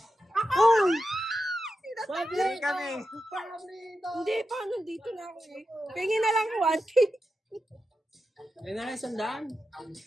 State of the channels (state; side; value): normal; both; correlation 0.89